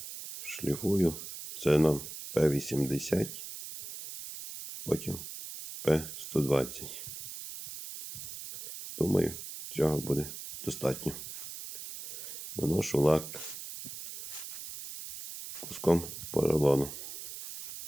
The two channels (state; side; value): noise; right; hiss, 9 dB below the sound